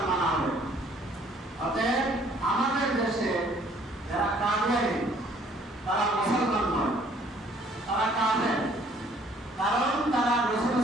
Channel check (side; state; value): both; normal; correlation 0.60